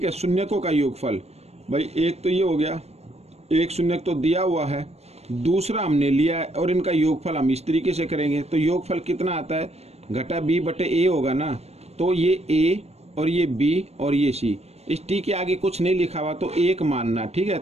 है, शून्यकों का योगफल, भाई एक तो ये हो गया, एक शून्यक तो दिया हुआ है, दूसरा हमने लिया है, और इनका योगफल हम इस तरीके से करेंगे। तो योगफल कितना आता है, घटा बी बटे ए होगा ना। तो ये ए और ये बी और ये सी, इस टी के आगे कुछ नहीं लिखा हुआ तो एक मानना। ठीक है,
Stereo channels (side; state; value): left; late; 0.31 ms